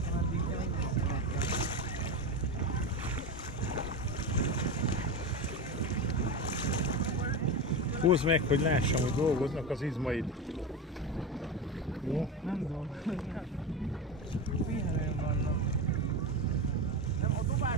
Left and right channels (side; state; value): both; normal; correlation 0.20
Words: addig, de még Húzd meg, hogy lássam, hogy dolgoznak az izmaid. Jó? nem dolgoznak. Pihenőn vannak. Nem, a